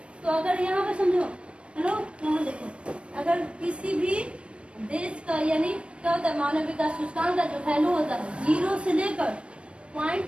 तो अगर यहाँ पे समझो, हेलो यहाँ देखो, अगर किसी भी देश का यानी क्या होता है मानव विकास सूचकांक का जो वैल्यू होता है 0 से लेकर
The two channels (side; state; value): left; late; 0.059 ms